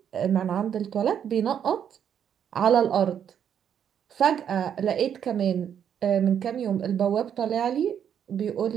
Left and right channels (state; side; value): quieter; left; 8.7 dB